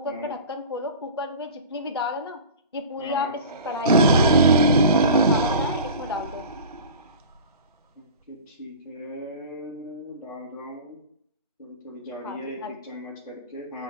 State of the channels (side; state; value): both; inverted; correlation -0.37